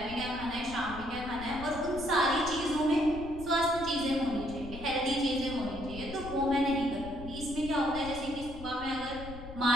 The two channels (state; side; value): noise; left; rumble, 12 dB below the sound